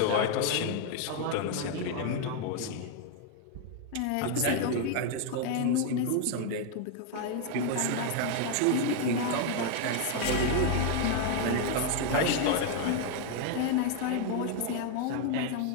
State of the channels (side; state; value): both; different; correlation 0.01